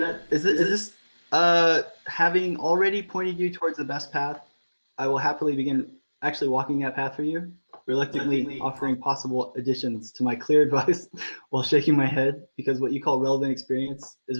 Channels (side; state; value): both; inverted; correlation -1.00